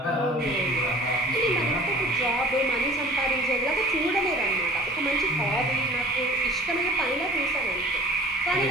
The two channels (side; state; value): both; normal; correlation 0.45